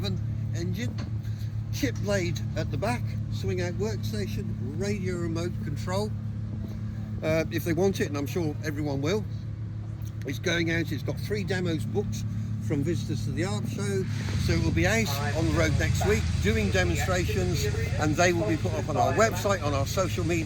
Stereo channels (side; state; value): both; identical; correlation 1.00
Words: engine. Chip blade at the back, swing out workstation, radio remote control. If they want it, and I'm sure everyone will. It's going out, it's got 3 demos booked from visitors to the Arb Show, so it will be out on the road next week doing demonstrations, and they will be put up on our website, on our social